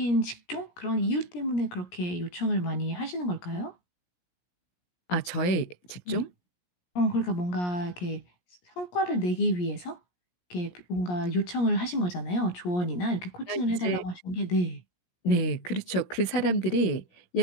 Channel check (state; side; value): late; right; 16 ms